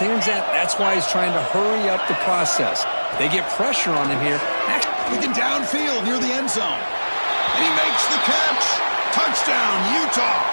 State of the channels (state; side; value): inverted; both; correlation -1.00